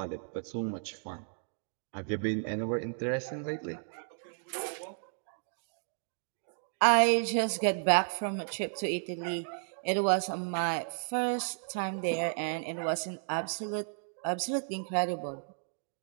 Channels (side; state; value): left; silent; digital silence